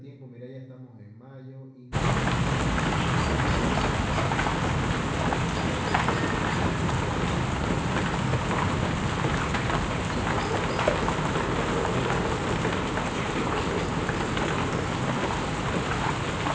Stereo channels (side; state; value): both; identical; correlation 1.00